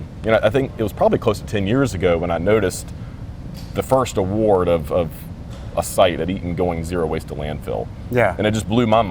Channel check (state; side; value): identical; both; correlation 1.00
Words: think it was probably close to 10 years ago when I noticed the first award of a site at Eaton going zero waste to landfill. Yeah. And it just blew my